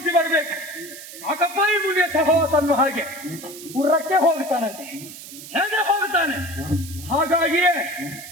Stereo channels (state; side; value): noise; right; hiss, 14 dB below the sound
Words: ಬರಬೇಕು. ಸಾಕಪ್ಪ ಈ ಮುನಿಯ ಸಹವಾಸ ಅನ್ನೋ ಹಾಗೆ ಪುರಕ್ಕೆ ಹೋಗ್ತಾನಂತೆ. ಹೇಗೆ ಹೋಗ್ತಾನೆ? ಹಾಗಾಗಿಯೇ